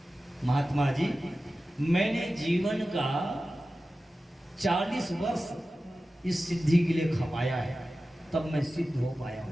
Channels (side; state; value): both; normal; correlation 0.94